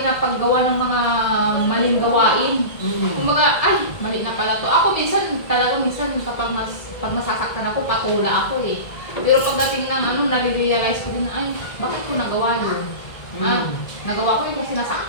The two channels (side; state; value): right; late; 1.7 ms